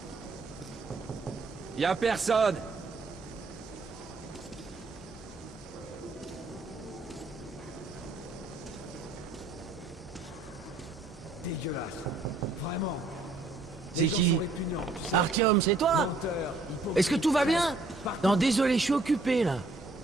Y'a personne. Dégueulasse. Vraiment. C'est qui? Artyom, c'est toi? Menteur, Est-ce que tout va bien? Non, désolé, je suis occupé, là.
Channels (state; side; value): quieter; left; 3.4 dB